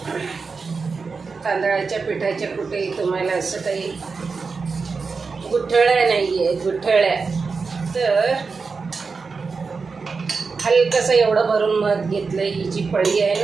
तांदळाच्या पिठाच्या कुठेही तुम्हाला असं काही गुठळ्या नाही आहे, गुठळ्या. तर हलकंसं एवढं भरून मध घेतलं. ही जी पळी आहे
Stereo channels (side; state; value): left; quieter; 4.7 dB